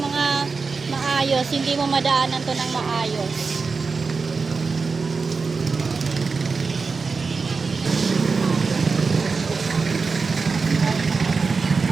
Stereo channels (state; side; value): quieter; left; 4.6 dB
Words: maayos. Hindi mo madaanan to ng maayos.